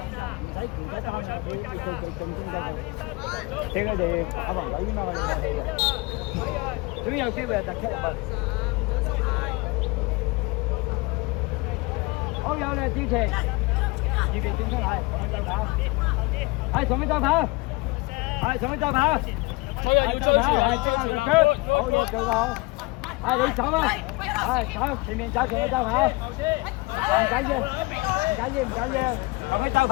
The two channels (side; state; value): right; quieter; 24.7 dB